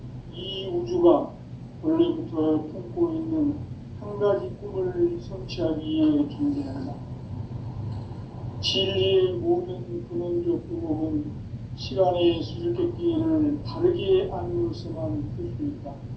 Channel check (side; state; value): both; identical; correlation 1.00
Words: 이 우주가 원래부터 품고 있는 한 가지 꿈을 성취하기 위해 존재한다. 진리의 모든 근원적 의목은 시간의 수수께끼를 바르게 안으로서만 풀 수 있다.